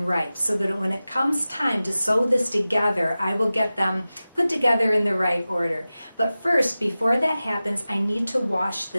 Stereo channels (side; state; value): both; inverted; correlation -0.96